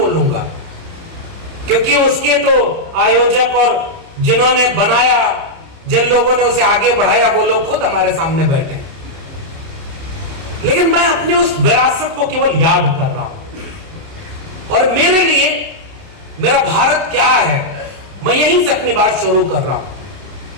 क्योंकि उसके तो आयोजक और जिन्होंने बनाया, जिन लोगों ने उसे आगे बढ़ाया, वो लोग खुद हमारे सामने बैठे हैं। लेकिन मैं अपनी उस विरासत को केवल याद कर रहा हूं। और मेरे लिए मेरा भारत क्या है, मैं यहीं से अपनी बात शुरू कर रहा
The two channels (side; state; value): left; late; 30 ms